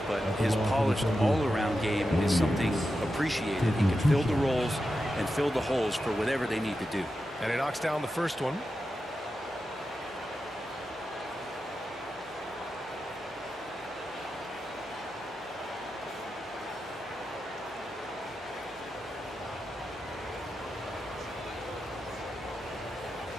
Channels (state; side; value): normal; both; correlation 0.90